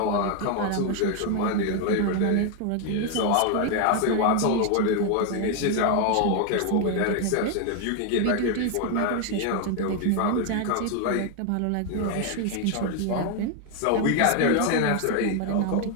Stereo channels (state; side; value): different; both; correlation 0.01